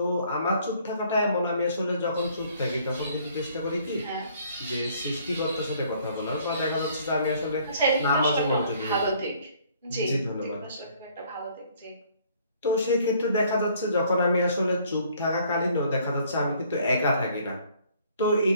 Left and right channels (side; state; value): both; inverted; correlation -0.60